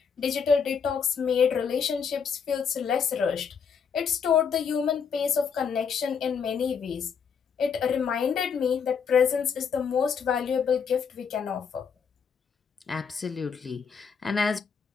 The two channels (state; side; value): quieter; right; 6.5 dB